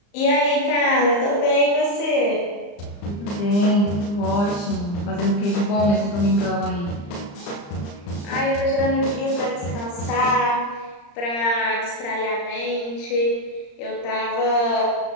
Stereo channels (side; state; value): right; late; 35 ms